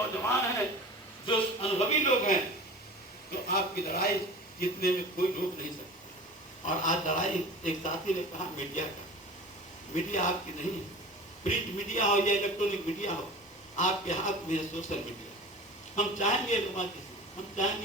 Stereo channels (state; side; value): normal; both; correlation 0.37